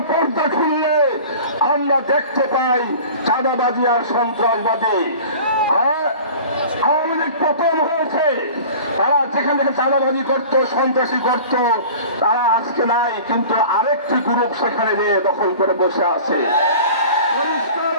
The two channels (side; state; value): both; inverted; correlation -0.41